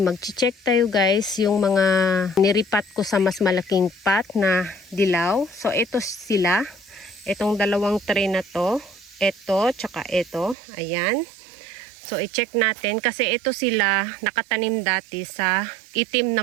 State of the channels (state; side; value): drops out; left; at 10.6 s